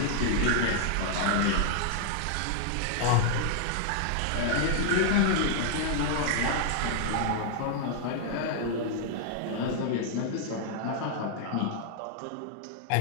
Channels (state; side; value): different; both; correlation 0.00